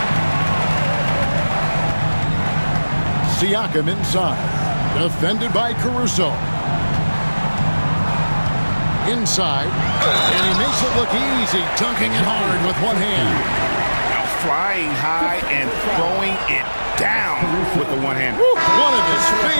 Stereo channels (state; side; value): inverted; both; correlation -1.00